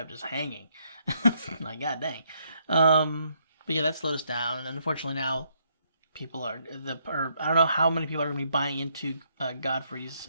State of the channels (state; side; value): inverted; both; correlation -0.73